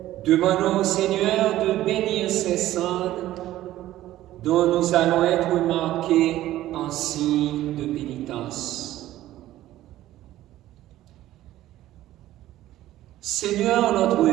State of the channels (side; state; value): left; quieter; 14.5 dB